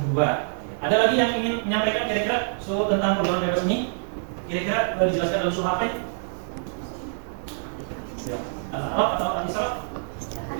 Ada lagi yang ingin menyampaikan kira-kira tentang pergaulan bebas ini? Kira-kira dijelaskan dalam surah apa ya? Al-A'raf atau Al-Isra?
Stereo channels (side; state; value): left; silent; digital silence